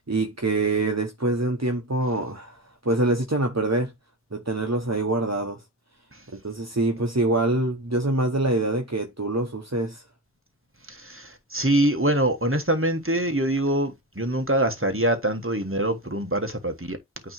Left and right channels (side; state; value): both; normal; correlation 0.20